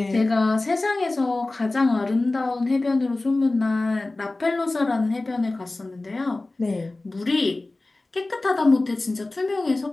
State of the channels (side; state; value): right; quieter; 3.0 dB